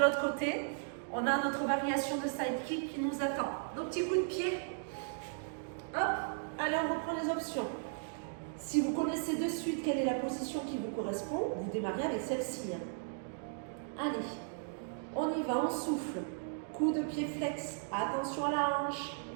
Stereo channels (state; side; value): silent; left; digital silence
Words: côté. On a notre variation de side kick qui nous attend. Nos petits coups de pied. Hop. Allez, on reprend les options. Si vous connaissez de suite quelle est la position qui vous correspond, vous démarrez avec celle-ci. Allez, on y va, on souffle. Coup de pied flex. Attention à la hanche.